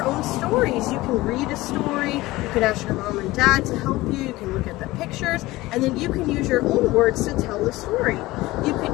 own stories. You can read a story, you can ask your mom and dad to help you, you can look at the pictures, and then you can use your own words to tell the story. You can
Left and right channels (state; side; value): quieter; right; 19.0 dB